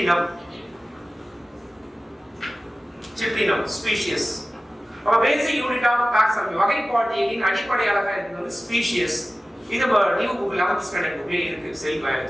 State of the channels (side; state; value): both; normal; correlation 0.96